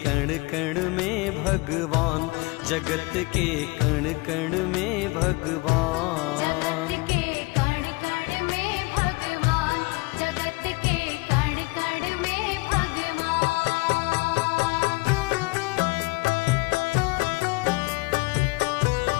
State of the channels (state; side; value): quieter; right; 24.7 dB